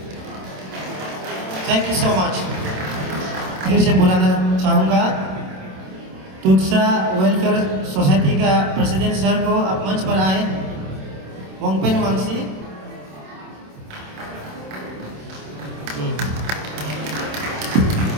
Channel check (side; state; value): left; late; 27 ms